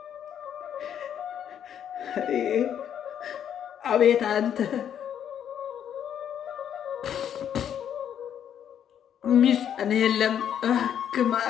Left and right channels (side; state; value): right; quieter; 9.3 dB